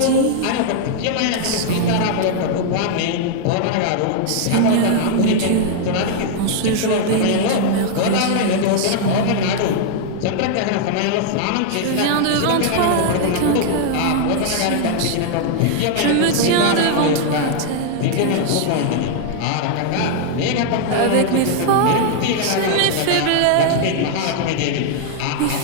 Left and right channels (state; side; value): different; both; correlation 0.00